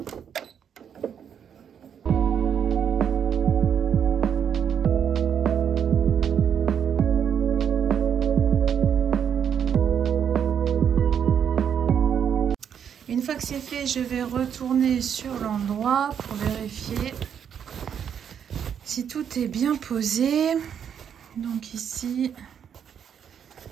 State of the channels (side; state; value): left; quieter; 8.2 dB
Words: Une fois que c'est fait, je vais retourner sur l'endroit pour vérifier si tout est bien posé. Donc ici...